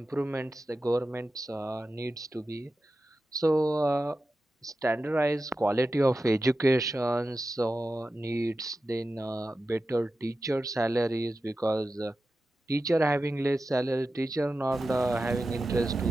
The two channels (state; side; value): normal; both; correlation 0.93